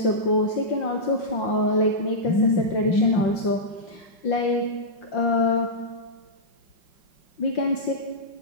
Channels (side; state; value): right; late; 5.7 ms